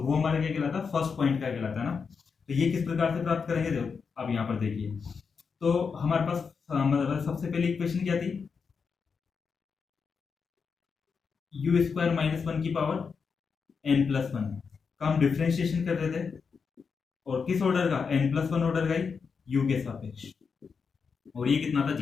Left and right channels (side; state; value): right; quieter; 5.6 dB